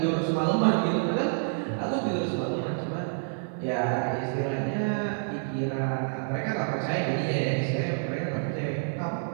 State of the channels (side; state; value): left; silent; digital silence